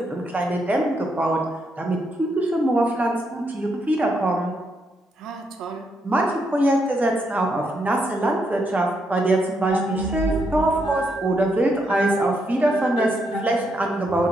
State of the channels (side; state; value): both; normal; correlation 0.78